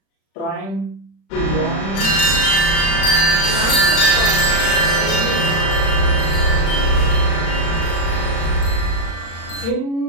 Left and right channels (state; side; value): late; right; 36 ms